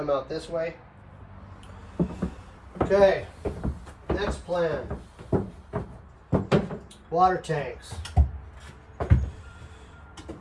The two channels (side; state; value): both; identical; correlation 1.00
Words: out this way. Okay, next plan. water tanks.